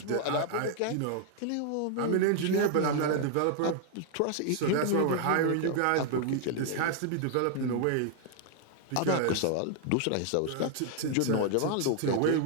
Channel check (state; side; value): different; both; correlation 0.00